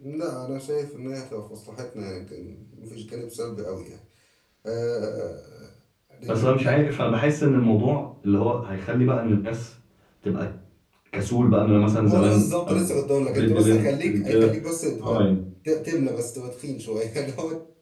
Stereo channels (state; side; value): identical; both; correlation 1.00